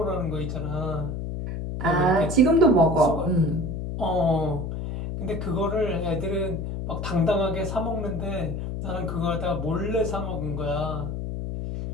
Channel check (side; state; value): left; noise; hum, 4 dB below the sound